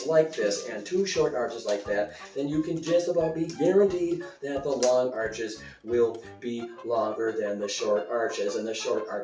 like this and 2 short arches like that, then you can just about be guaranteed that the long arches will be longer than the short arches, and the short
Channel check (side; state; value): both; identical; correlation 1.00